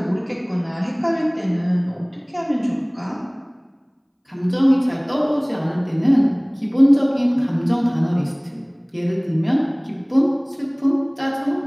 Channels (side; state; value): both; identical; correlation 1.00